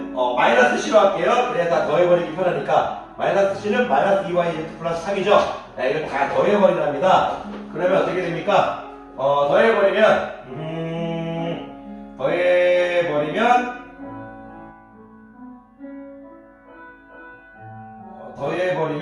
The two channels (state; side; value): identical; both; correlation 1.00